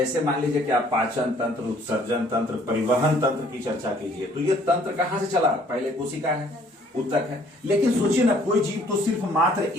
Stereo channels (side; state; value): both; normal; correlation 0.60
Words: मान लीजिए कि आप पाचन तंत्र, उत्सर्जन तंत्र, परिवहन तंत्र की चर्चा कीजिए, तो ये तंत्र कहां से चला, पहले कोशिका है, उत्तक है। लेकिन सोचिए ना, कोई जीव तो सिर्फ मात्र